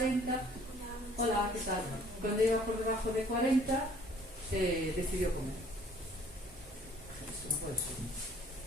hola, ¿qué tal? Cuando iba por debajo de 40, decidió comer. Eso no puede ser.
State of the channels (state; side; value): normal; both; correlation 0.56